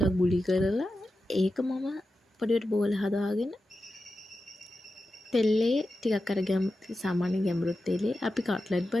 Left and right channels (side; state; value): both; normal; correlation 0.91